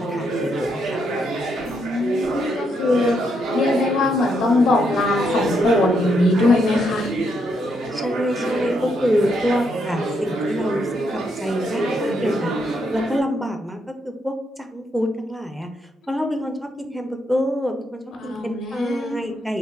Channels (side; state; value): both; normal; correlation 0.77